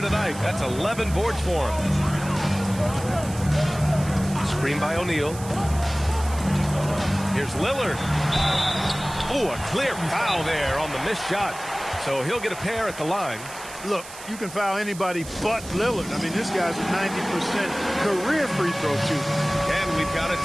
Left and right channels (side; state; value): right; noise; hiss, 15 dB below the sound